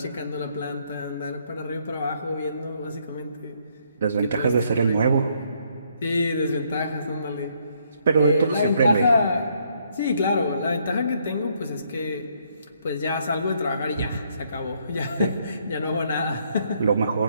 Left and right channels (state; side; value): inverted; both; correlation -0.71